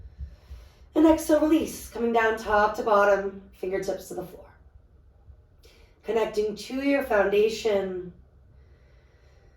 And exhale, release, coming down top to bottom, fingertips to the floor. Connecting to your foundation.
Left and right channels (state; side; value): identical; both; correlation 1.00